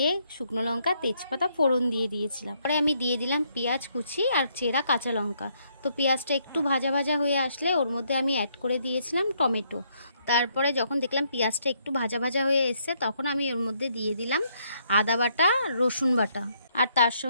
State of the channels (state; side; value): inverted; both; correlation -0.72